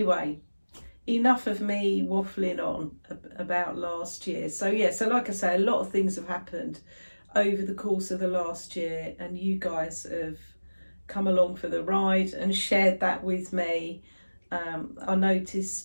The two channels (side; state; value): both; inverted; correlation -1.00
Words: enough of me waffling on about last year. So yeah, so like I say, a lot of things have happened over the course of the last year, and you guys have come along for the ride and shared that with me. I